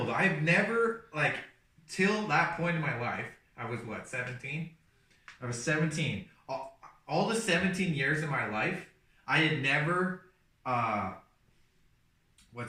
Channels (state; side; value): identical; both; correlation 1.00